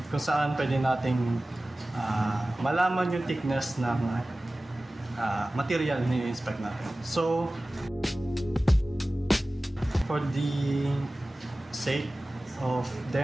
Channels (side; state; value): both; normal; correlation 0.97